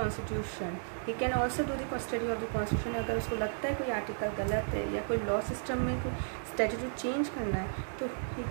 he can also do the study of the constitution. अगर उसको लगता है कोई article गलत है या कोई law system में कोई स्टैट्यूट चेंज करना है, तो he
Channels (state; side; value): silent; left; digital silence